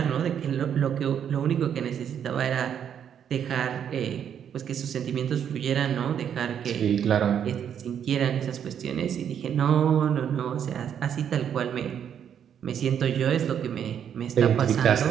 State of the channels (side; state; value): left; quieter; 8.7 dB